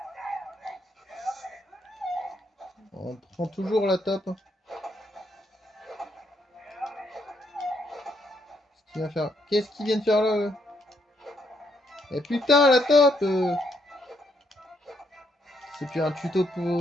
On prend toujours la top. Qu'est-ce qu'il vient de faire là? Eh putain, la top C'est plus un tuto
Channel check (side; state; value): both; normal; correlation 0.74